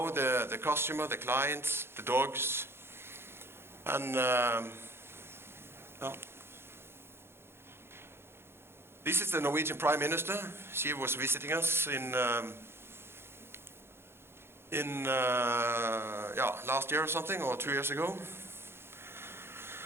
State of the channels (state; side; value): late; left; 0.12 ms